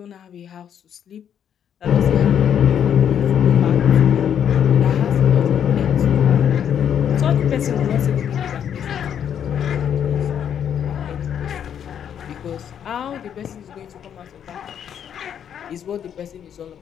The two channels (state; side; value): quieter; right; 8.9 dB